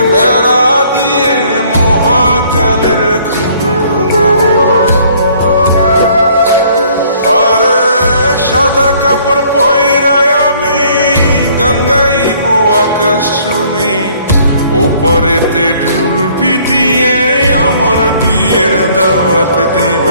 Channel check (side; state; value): both; inverted; correlation -0.60